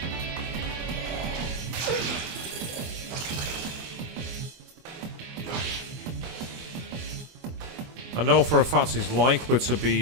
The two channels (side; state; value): left; late; 24 ms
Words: I know for a fact he's likely to